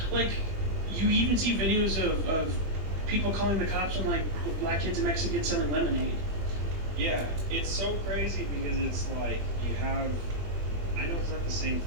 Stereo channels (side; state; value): left; late; 21 ms